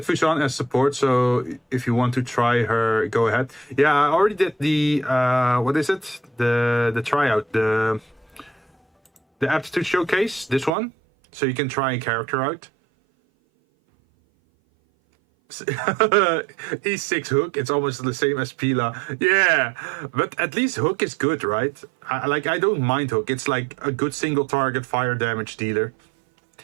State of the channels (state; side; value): drops out; left; at 10.7 s